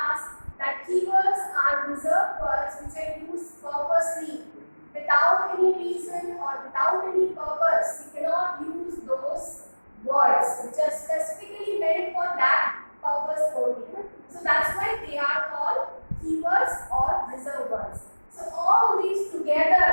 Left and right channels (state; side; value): inverted; both; correlation -1.00